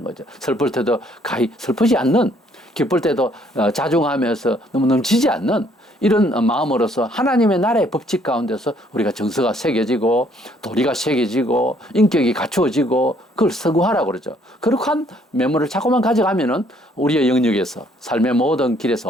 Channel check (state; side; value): normal; both; correlation 0.65